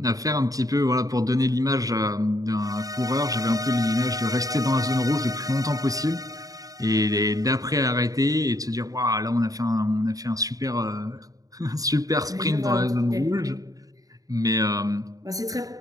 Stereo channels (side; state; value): left; late; 0.17 ms